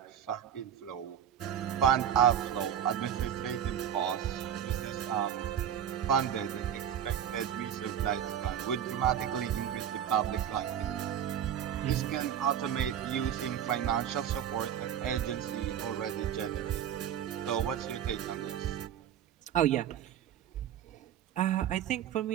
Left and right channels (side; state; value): left; quieter; 9.8 dB